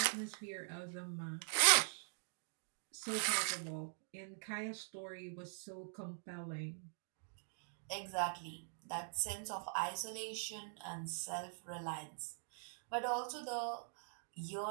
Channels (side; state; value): left; silent; digital silence